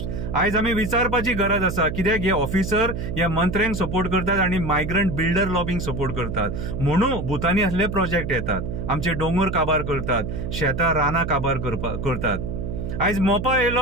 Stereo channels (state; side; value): noise; right; hum, 4 dB below the sound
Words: आयज आमी विचारपाची गरज आसा कित्याक हे ऑफिसर ह्या मंत्र्यांक सपोर्ट करतात आणि मायग्रंट बिल्डर लॉबिंग सपोर्ट करतात. म्हणून भुतानी असले प्रोजेक्ट येतात, आमचे दोंगर काबार करतात, शेतां रानां काबार करतात. आयज मोपा येयलो,